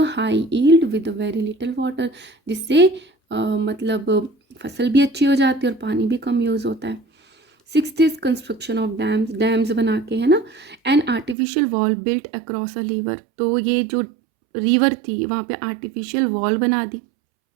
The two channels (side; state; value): left; drops out; at 11.4 s